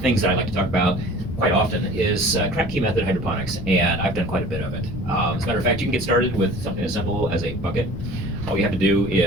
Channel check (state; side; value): noise; left; rumble, 9 dB below the sound